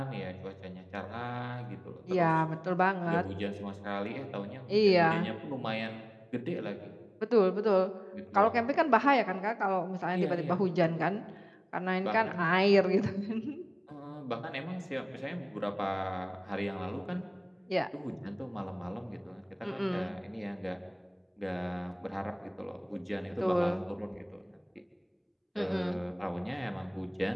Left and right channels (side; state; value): both; identical; correlation 1.00